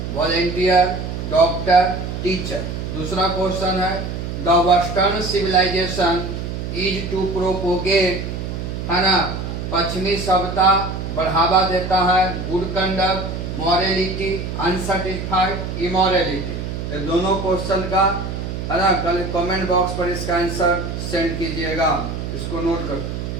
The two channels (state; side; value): noise; right; hum, 5 dB below the sound